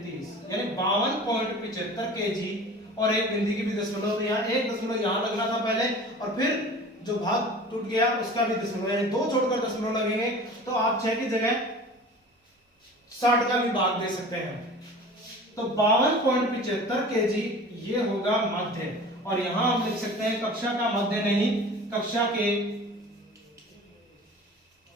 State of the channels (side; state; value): both; normal; correlation 0.40